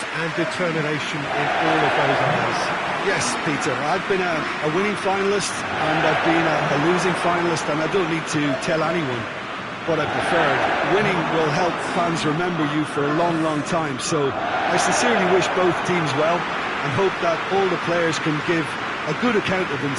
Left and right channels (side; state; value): both; identical; correlation 1.00